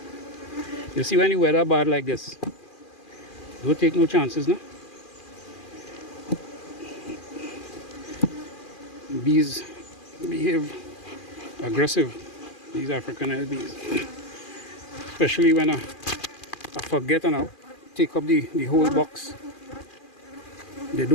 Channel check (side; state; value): right; late; 2.4 ms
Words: You see, when the weather bad like this, don't take no chances, no? Bees behave aggressive, these African bees. Especially when I forget and I take up the whole box. They